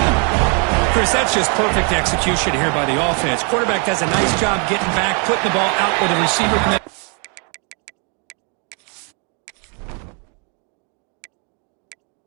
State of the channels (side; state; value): left; quieter; 37.3 dB